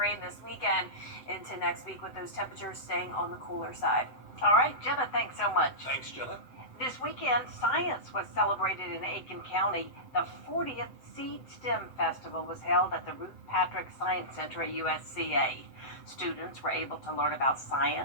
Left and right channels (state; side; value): late; right; 7.8 ms